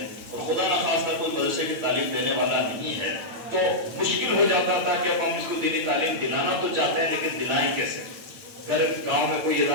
اور خدا نخواستہ کوئی مدرسے کی تعلیم دینے والا نہیں ہے، تو مشکل ہو جاتا تھا کہ اب ہم اس کو دینی تعلیم دلانا تو چاہتے ہیں لیکن دلائیں کیسے؟ گاؤں میں کوئی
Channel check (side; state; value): left; late; 8.9 ms